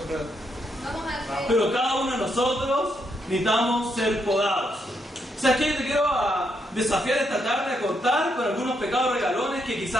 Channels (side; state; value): both; normal; correlation 0.78